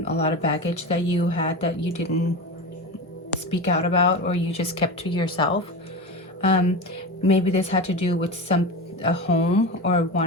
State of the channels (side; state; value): both; normal; correlation 0.24